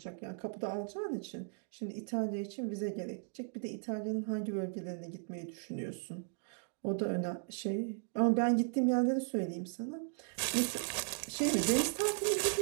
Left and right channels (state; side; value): silent; left; digital silence